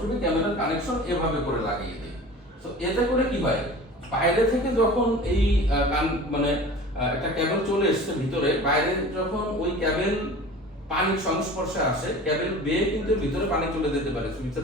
বি ক্যামেরার কানেকশন এভাবে করে লাগিয়ে দিই। তো এতে করে কি হয়, বাইরে থেকে যখন এই মানে একটা ক্যাবেল চলে এসছে ভিতরে, বাইরে যখন ওই ক্যাবেল পানির সংস্পর্শে আসে, ক্যাবেল বেয়ে কিন্তু ভিতরে পানি চলে যেতে পারে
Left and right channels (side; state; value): both; normal; correlation 0.39